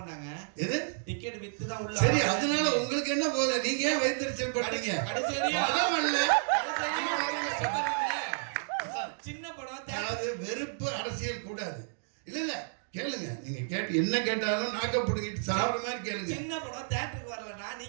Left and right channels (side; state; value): left; silent; digital silence